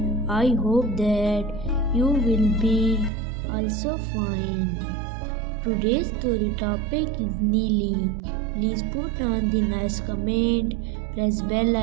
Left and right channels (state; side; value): drops out; left; at 3.1 s